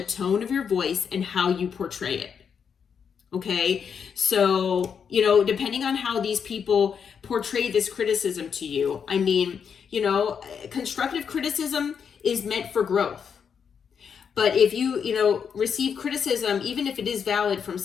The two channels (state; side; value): quieter; right; 6.9 dB